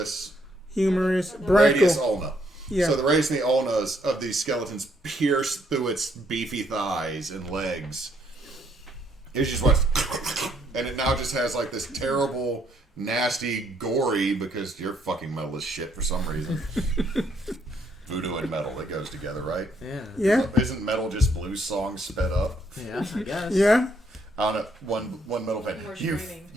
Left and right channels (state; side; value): normal; both; correlation 0.70